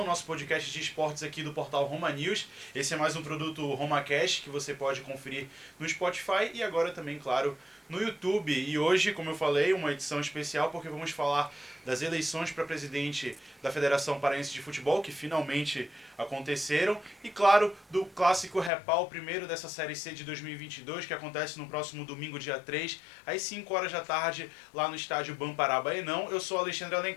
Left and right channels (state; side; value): drops out; right; at 18.7 s